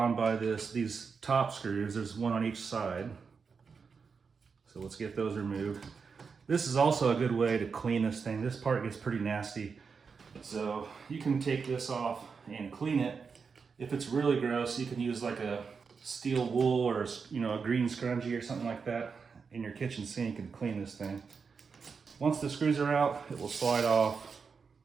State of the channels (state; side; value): quieter; left; 5.5 dB